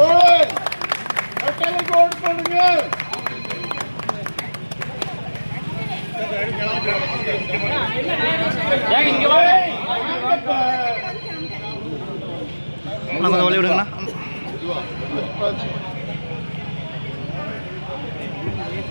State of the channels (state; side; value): inverted; both; correlation -1.00